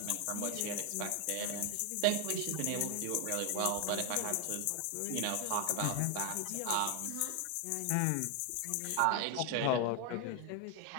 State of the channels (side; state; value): both; different; correlation 0.01